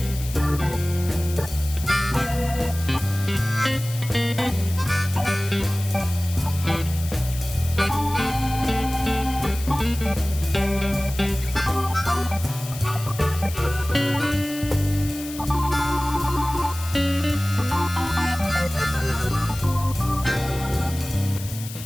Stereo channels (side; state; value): left; noise; hiss, 13 dB below the sound